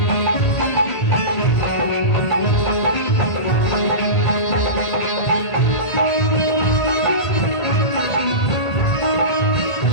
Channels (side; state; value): right; late; 1.5 ms